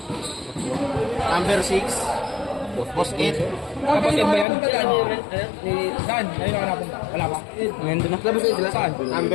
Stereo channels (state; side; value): drops out; right; at 4.5 s